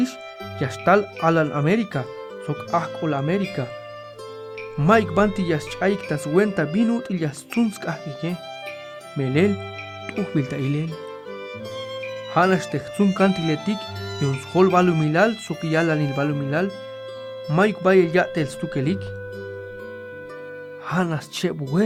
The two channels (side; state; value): both; identical; correlation 1.00